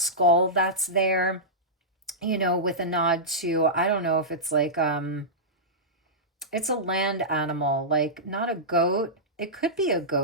that's there, with a nod to, I don't know if it's like, it's a land animal, like not a goat. It could be a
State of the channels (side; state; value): both; normal; correlation -0.15